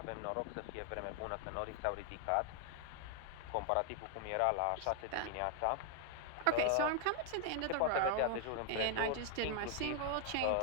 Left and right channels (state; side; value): different; both; correlation 0.00